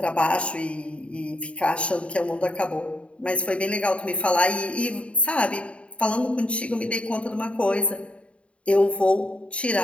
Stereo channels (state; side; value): late; right; 0.061 ms